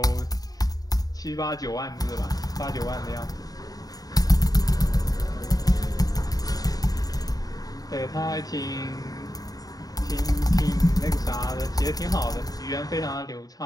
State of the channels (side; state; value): right; late; 0.18 ms